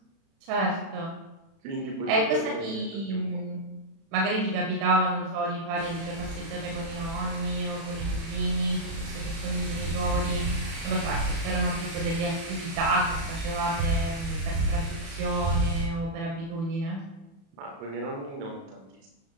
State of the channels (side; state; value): left; late; 36 ms